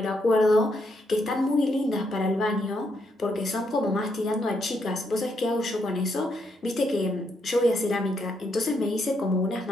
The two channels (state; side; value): normal; both; correlation 0.77